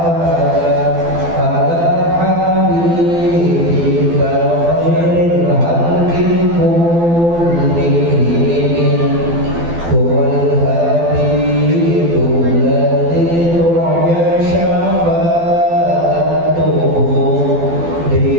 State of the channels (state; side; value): late; left; 12 ms